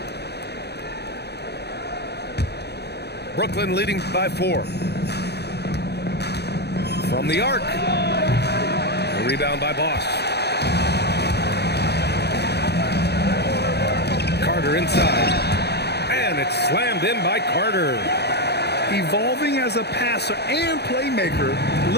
Brooklyn leading by 4. From the arc. A rebound by Boss. Carter inside. And it's slammed in by Carter. Evolving as a passer and playmaker,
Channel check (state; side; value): late; right; 0.48 ms